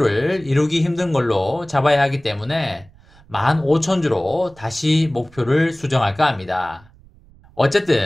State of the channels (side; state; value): right; noise; rumble, 27 dB below the sound